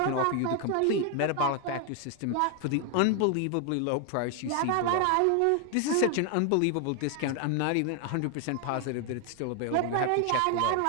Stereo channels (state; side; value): different; both; correlation 0.01